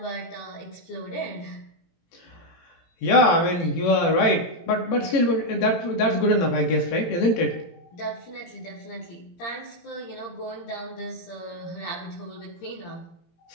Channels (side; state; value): right; late; 18 ms